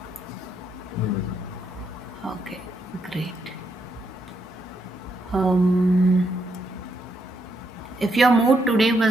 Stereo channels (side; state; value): both; normal; correlation 0.78